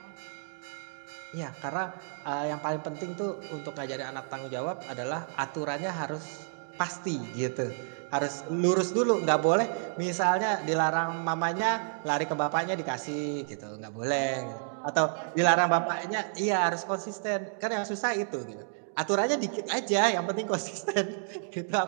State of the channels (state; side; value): silent; left; digital silence